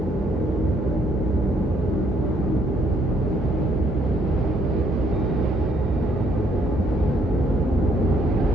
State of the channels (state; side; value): normal; both; correlation 0.68